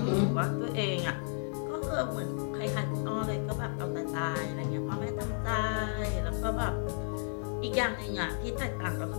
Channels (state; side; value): silent; right; 56 dB below the other